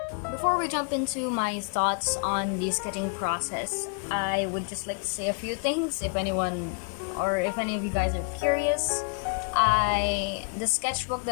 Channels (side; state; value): right; quieter; 39.0 dB